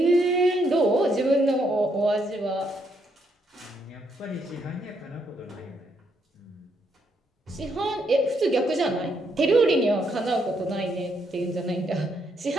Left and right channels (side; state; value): both; normal; correlation 0.75